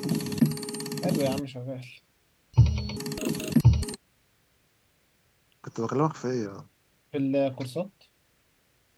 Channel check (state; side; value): identical; both; correlation 1.00